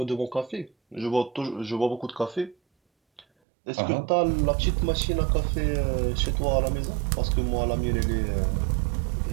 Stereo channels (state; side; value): drops out; left; at 3.2 s